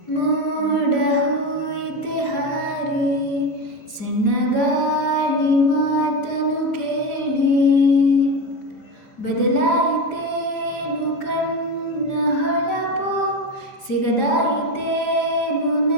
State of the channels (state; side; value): late; right; 5.1 ms